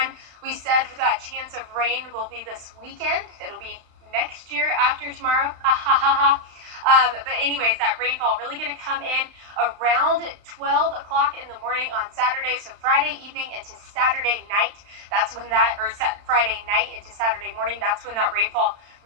we said for that chance of rain will be this weekend. It'll be next year after tomorrow. But anyways, that rainfall really going to come in around 12 o'clock in the morning on Saturday. So Friday evening into Saturday night, that's when that, or Friday night into Saturday morning, that's when that rainfall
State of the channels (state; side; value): late; left; 35 ms